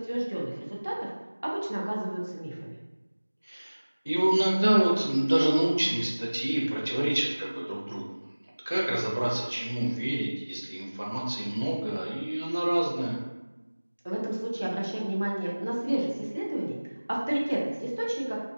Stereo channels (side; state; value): both; inverted; correlation -1.00